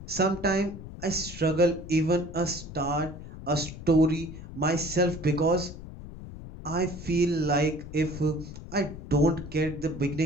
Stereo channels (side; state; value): left; noise; rumble, 13 dB below the sound